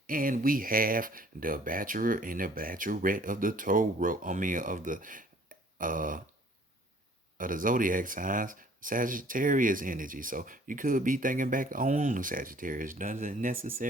And we have the bachelor and the bachelorette of the Torah. Uh of the zodiac signs, Sagittarius energy. So you could be thinking back on the Sagittarius. Doesn't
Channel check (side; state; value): both; normal; correlation 0.56